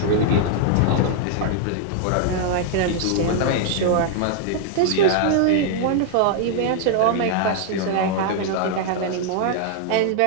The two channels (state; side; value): different; both; correlation -0.01